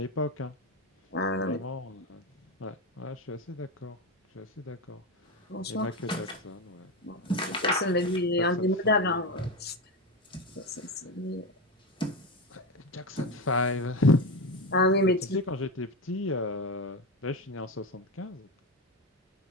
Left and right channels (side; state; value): both; normal; correlation 0.16